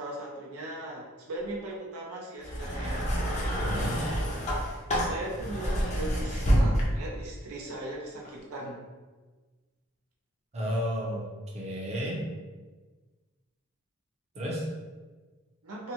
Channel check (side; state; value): both; normal; correlation 0.69